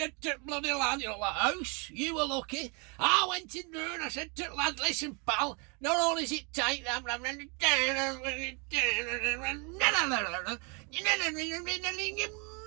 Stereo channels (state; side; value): quieter; left; 33.7 dB